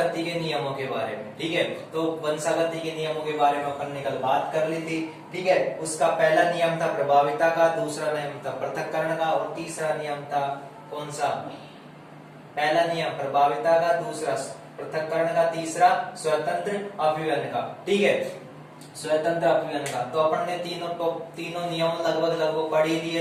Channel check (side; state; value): both; identical; correlation 1.00